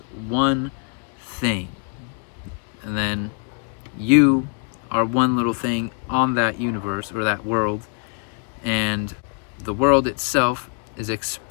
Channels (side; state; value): right; quieter; 39.5 dB